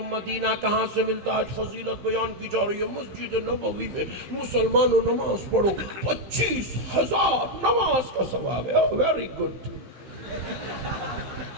مدینہ کہاں سے ملتا؟ آج فضیلت بیان کی جا رہی ہے، مسجد نبوی میں مسلمانوں نماز پڑھو، 25,000 نماز کا ثواب ہے۔ ویری گڈ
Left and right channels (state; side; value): late; left; 16 ms